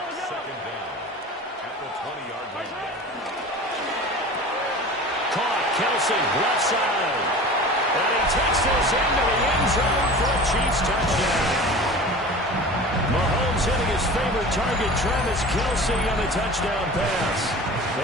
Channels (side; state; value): both; normal; correlation 0.37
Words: 2nd down at the 20-yard line. Caught, Kelsey, left side. And he takes this into the end zone for a Chiefs touchdown. Mahomes hitting his favorite target, Travis Kelsey, on the touchdown pass.